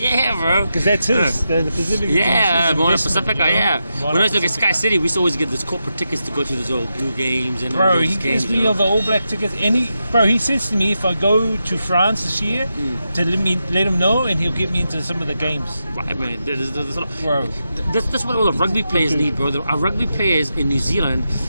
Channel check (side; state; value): both; inverted; correlation -0.87